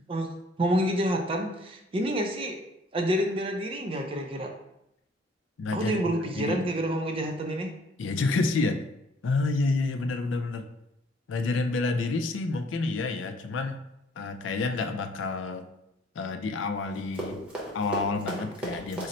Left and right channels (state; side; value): normal; both; correlation 0.58